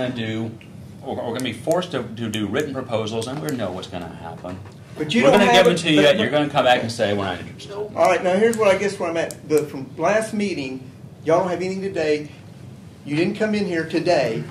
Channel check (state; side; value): identical; both; correlation 1.00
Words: to be forced to do written proposals, and we know what's going to happen. But you We're don't going to have give it- them to you, but- you're going to come back and say we're not interested. All right, now here's what I guess where I'm at. From last meeting, y'all don't have anything today. You didn't come in here today